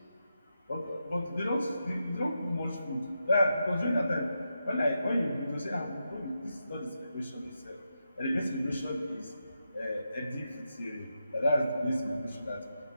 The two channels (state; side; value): inverted; both; correlation -0.86